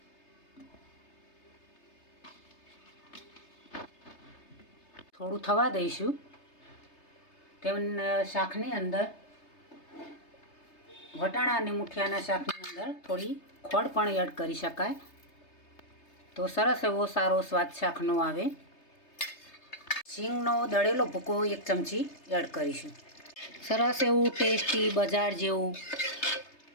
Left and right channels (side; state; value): right; late; 3.3 ms